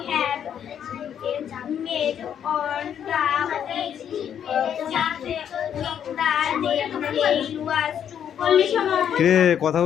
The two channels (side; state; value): right; quieter; 9.0 dB